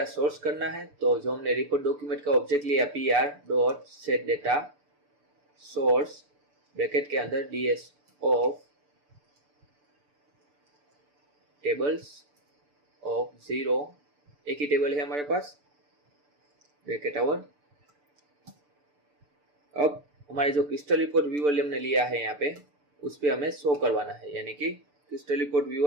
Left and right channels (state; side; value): late; left; 6.8 ms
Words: सोर्स करना है, तो जो हमने रिपोर्ट डॉक्यूमेंट का ऑब्जेक्ट लिया pr dot set data source bracket के अंदर ds ऑफ टेबल्स ऑफ 0, एक ही टेबल है हमारे पास ब्रैकेट आवर। अब हमारे जो क्रिस्टल रिपोर्ट व्यूअर हमने लिया है यहाँ पे उस पे हमें शो करवाना है यानी कि crystal report